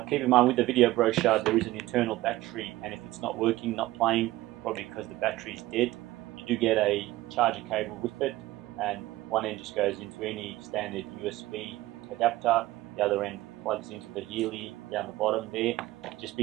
in mind with the video brochure there is an internal battery, and if it's not working, not playing, probably because the battery is dead, you do get a charger cable with it, and one end just goes into any standard USB adapter, the other end plugs into the Healy down the bottom there. Just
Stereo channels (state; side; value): quieter; left; 17.3 dB